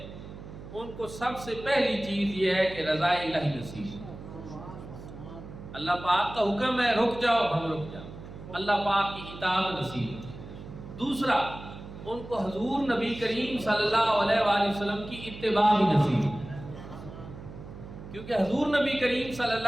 ان کو سب سے پہلی چیز یہ ہے کہ رضا الہی نصیب۔ اللہ پاک کا حکم ہے رک جاؤ، ہم رک جاؤ، اللہ پاک کی اطاعت نصیب۔ دوسرا، ان کو حضور نبی کریم صلی اللہ علیہ وآلہ وسلم کی اتباع بھی نصیب، کیونکہ حضور نبی کریم صلی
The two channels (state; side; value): noise; right; hum, 13 dB below the sound